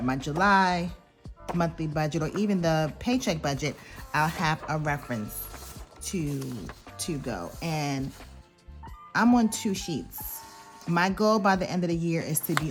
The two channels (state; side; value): identical; both; correlation 1.00